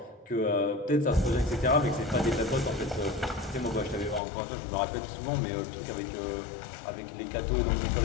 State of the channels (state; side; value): drops out; right; at 4.2 s